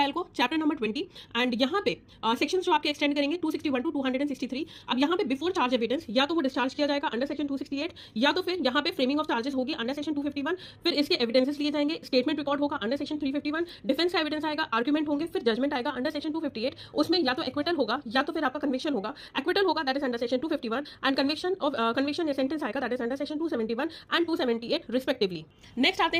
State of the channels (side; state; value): both; identical; correlation 1.00